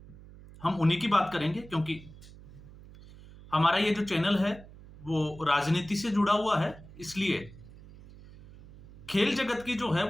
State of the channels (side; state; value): right; noise; hum, 19 dB below the sound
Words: हम उन्हीं की बात करेंगे क्योंकि हमारा ये जो चैनल है वो राजनीति से जुड़ा हुआ है, इसलिए खेल जगत की जो है